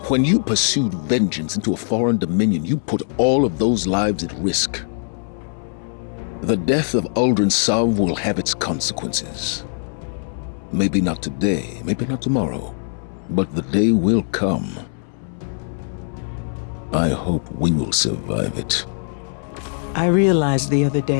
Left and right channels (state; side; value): silent; right; 63 dB below the other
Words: When you pursued vengeance into a foreign dominion, you put all of those lives at risk. The death of Aldrin Sov will have its consequences. Maybe not today, maybe not tomorrow, but the day will come. I hope we will survive it. I realized the other